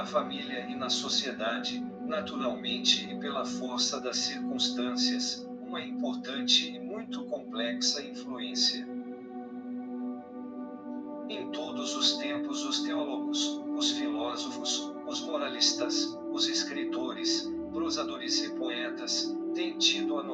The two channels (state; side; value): identical; both; correlation 1.00